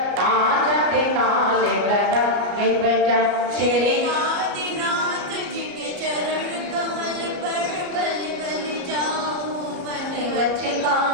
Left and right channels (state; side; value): late; left; 33 ms